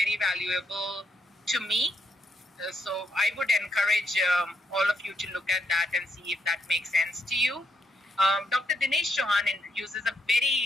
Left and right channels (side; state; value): both; normal; correlation 0.77